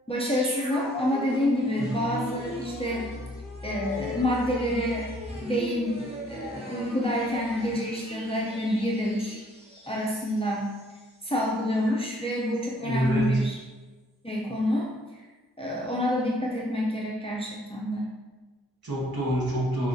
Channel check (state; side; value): normal; both; correlation 0.63